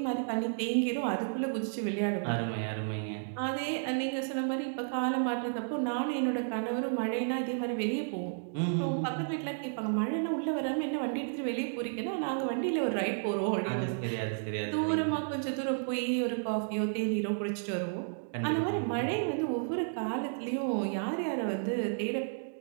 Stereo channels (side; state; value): left; silent; digital silence